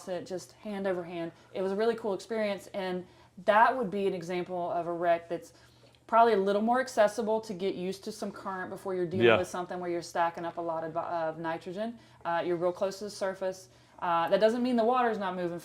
it, just hand over hand. It was a really cool experience. And that would be an example of a wreck that's probably a little more accessible to get used to some current before you're dealing with something where you're stacking up a lot of nitrogen. You're real close to the surface. That doesn't mean the water's not moving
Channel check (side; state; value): both; identical; correlation 1.00